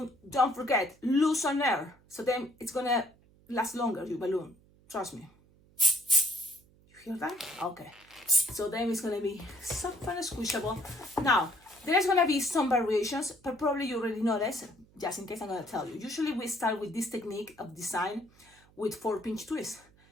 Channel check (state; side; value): noise; right; hum, 29 dB below the sound